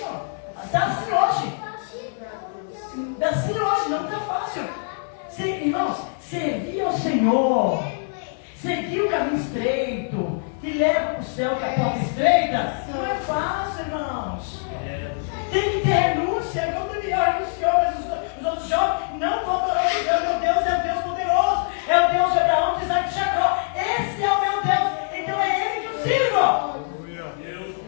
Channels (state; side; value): silent; right; 56 dB below the other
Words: ó. Está assim hoje. Está assim hoje, não está fácil. Irmãos, servir ao Senhor, seguir o caminho estreito, que leva para o céu, que a porta estreita, não é fácil, irmãos. Tem que ter renúncia, como Daniel renunciou, mas os outros jovens não vão adorar o Deus. Meu Deus é o Deus poderoso, é o Deus de Abraão, de Isaac e de Jacó. Esse é o meu Deus, então é Ele que eu sirvo.